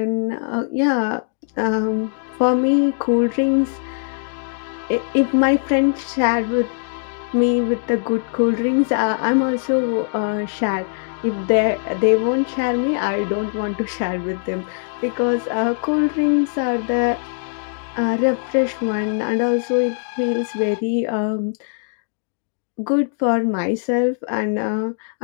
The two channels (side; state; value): right; silent; digital silence